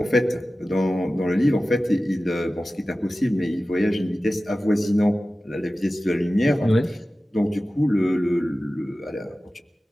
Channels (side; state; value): both; normal; correlation 0.95